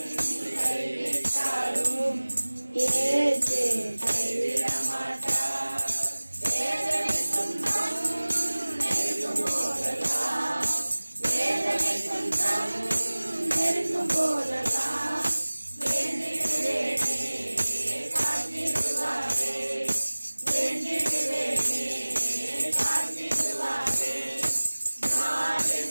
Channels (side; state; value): both; inverted; correlation -1.00